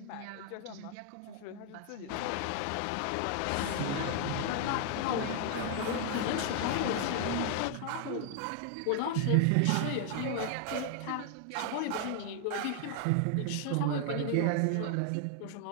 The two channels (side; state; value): both; different; correlation 0.00